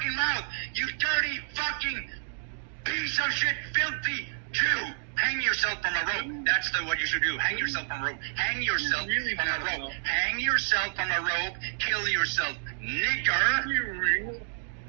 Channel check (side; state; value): left; silent; digital silence